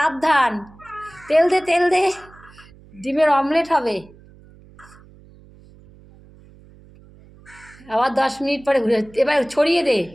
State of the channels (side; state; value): right; noise; hum, 24 dB below the sound